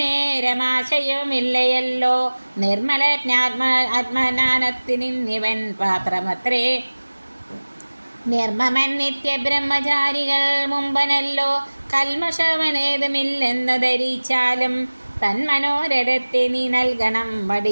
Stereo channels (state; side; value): inverted; both; correlation -1.00